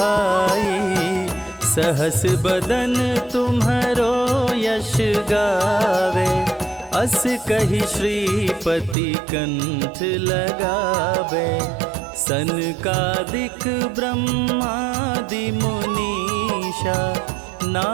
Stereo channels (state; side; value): drops out; left; at 9.0 s